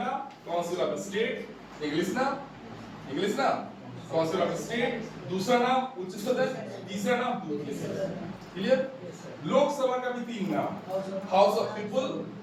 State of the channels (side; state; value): both; identical; correlation 1.00